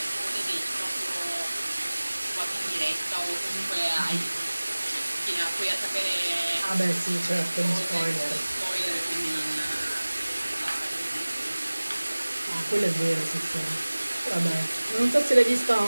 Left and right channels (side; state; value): both; inverted; correlation -1.00